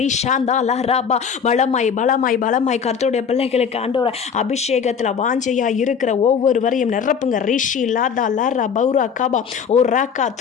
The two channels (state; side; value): quieter; right; 6.8 dB